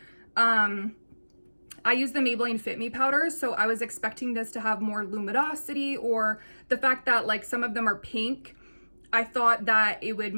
I use the Maybelline Fit Me powders, so I was expecting this to have more luminosity, or the fact that like some of them are pink. I thought that it would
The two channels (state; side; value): inverted; both; correlation -1.00